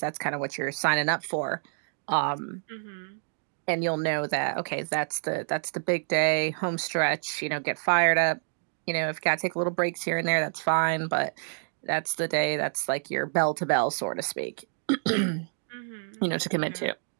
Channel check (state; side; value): silent; left; digital silence